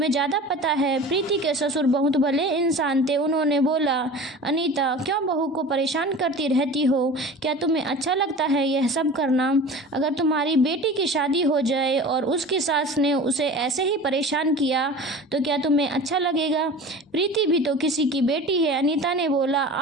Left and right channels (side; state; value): both; normal; correlation 0.37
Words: ज़्यादा पता है। प्रीति के ससुर बहुत भले इंसान थे। उन्होंने बोला, अनीता क्यों बहू को परेशान करती रहती हो, क्या तुम्हें अच्छा लगता है यह सब करना? अगर तुम्हारी बेटी की शादी हो जाए और उसकी सास ने उसे ऐसे ही परेशान किया तो क्या तुम्हें अच्छा लगेगा? प्रीति भी तो किसी की बेटी है। अनीता ने बोला,